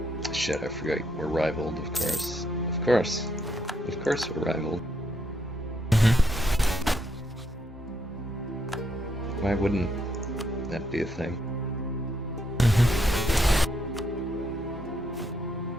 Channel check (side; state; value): both; normal; correlation 0.76